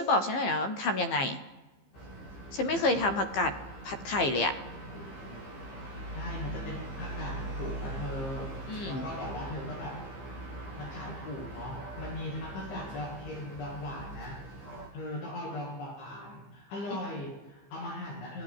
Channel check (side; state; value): right; late; 15 ms